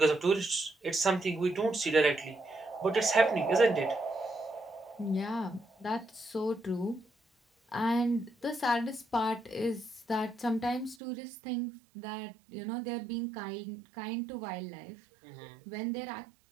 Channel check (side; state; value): left; drops out; at 11.0 s